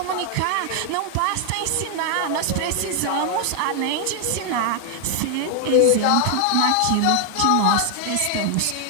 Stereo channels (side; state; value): both; different; correlation 0.00